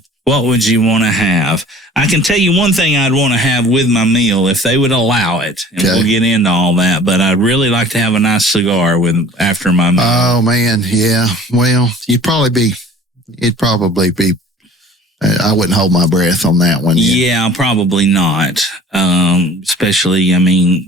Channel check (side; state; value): both; normal; correlation 0.47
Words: What would you want to have? I can tell you one thing I'd want to have with my meal if they would allow it. And we'll get into all that. But I'd really like to have a nice cigar after my meal. Oh, man. Yeah. Well, it'd probably be, I wouldn't hold my breath on that one. Yeah, probably not. Especially,